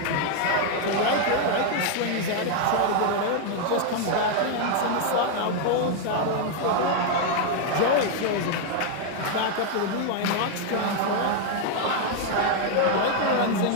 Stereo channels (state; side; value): different; both; correlation 0.00